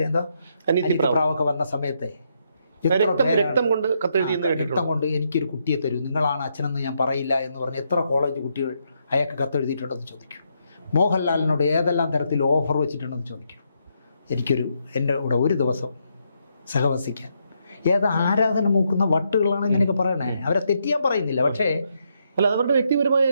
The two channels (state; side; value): inverted; both; correlation -0.78